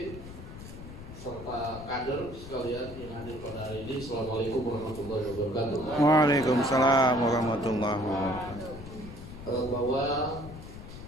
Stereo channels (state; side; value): noise; left; rumble, 13 dB below the sound